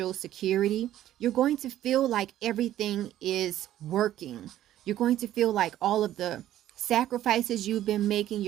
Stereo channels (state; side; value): quieter; left; 12.8 dB